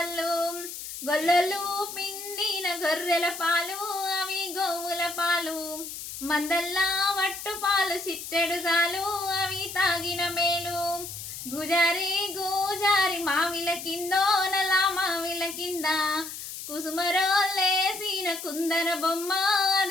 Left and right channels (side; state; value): left; noise; hiss, 9 dB below the sound